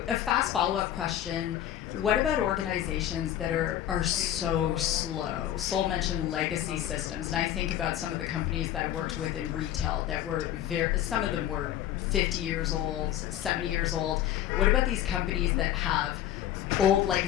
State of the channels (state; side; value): quieter; right; 11.8 dB